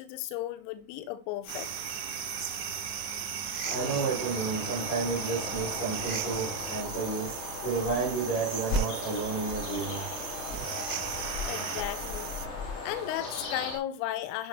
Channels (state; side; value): late; right; 36 ms